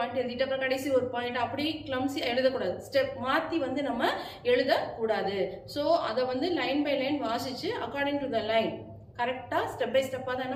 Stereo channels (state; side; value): identical; both; correlation 1.00